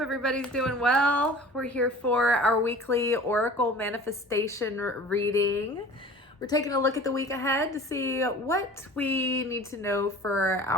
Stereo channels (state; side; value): normal; both; correlation 0.42